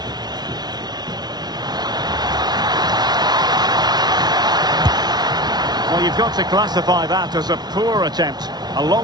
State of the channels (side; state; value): left; late; 0.20 ms